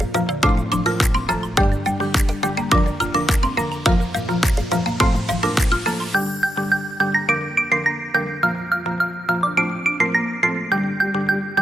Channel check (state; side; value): normal; both; correlation 0.85